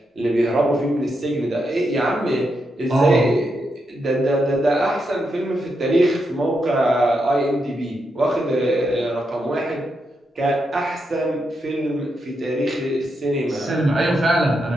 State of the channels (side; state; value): both; normal; correlation 0.83